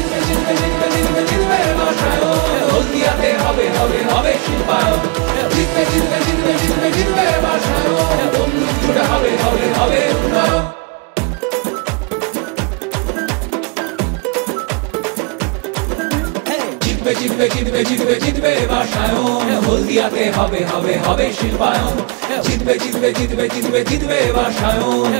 জিতবে জিতবে জিতবে জিতবে বাসায়ন, হলদিয়াতে হবে হবে হবে শিল্পায়ন। জিতবে জিতবে জিতবে জিতবে জিতবে বাসায়ন, তমলুক জুড়ে হবে হবে হবে উন্নয়ন। জিতবে জিতবে জিতবে জিতবে জিতবে বাসায়ন, হলদিয়াতে হবে হবে হবে শিল্পায়ন। জিতবে জিতবে জিতবে জিতবে জিতবে বাসায়ন,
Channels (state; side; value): quieter; left; 30.4 dB